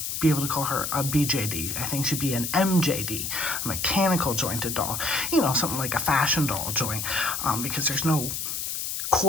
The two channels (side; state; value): left; noise; hiss, 3 dB below the sound